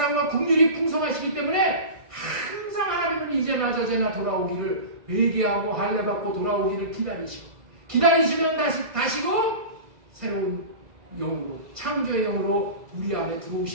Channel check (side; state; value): left; late; 2.0 ms